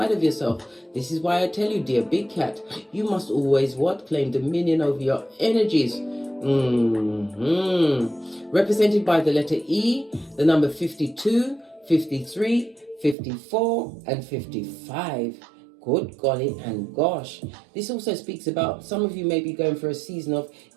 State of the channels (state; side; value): drops out; left; at 13.2 s